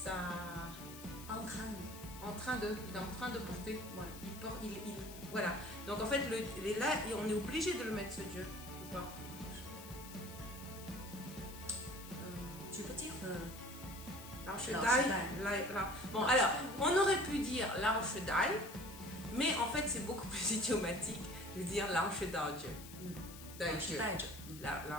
En train de, il est en train de porter. Voilà. Il porte, voilà. Donc en fait, là, on est obligé de le mettre ce je ou pas? Tu peux dire Lao Shi Dai. Bon, alors, on aurait pu dire Lao Shi Dai, mais en fait, c'est beaucoup plus idiomatique de dire Lao Shi Dai Je. Dai Je.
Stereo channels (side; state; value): left; noise; hiss, 15 dB below the sound